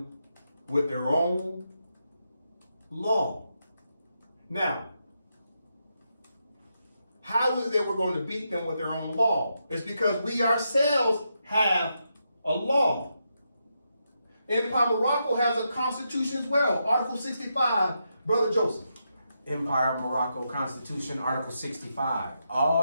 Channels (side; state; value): both; inverted; correlation -0.83